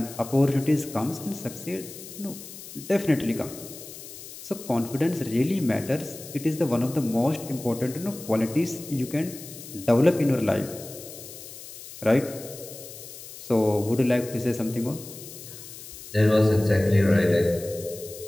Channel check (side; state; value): left; noise; hiss, 14 dB below the sound